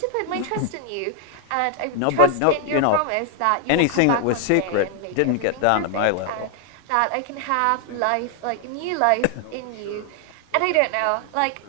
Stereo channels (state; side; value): different; both; correlation 0.00